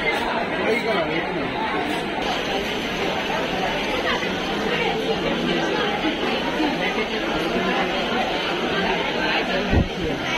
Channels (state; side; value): identical; both; correlation 1.00